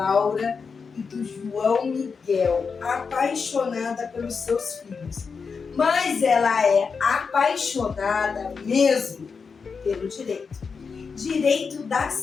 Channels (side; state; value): right; quieter; 5.4 dB